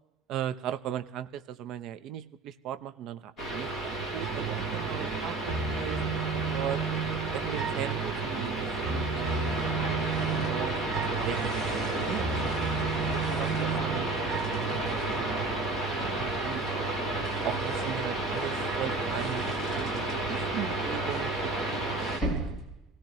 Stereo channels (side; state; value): left; quieter; 3.5 dB